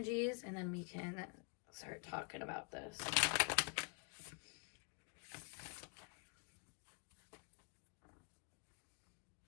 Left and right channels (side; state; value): right; quieter; 35.6 dB